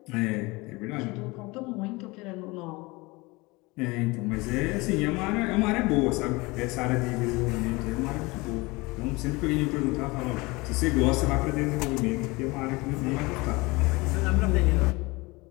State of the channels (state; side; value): quieter; right; 23.9 dB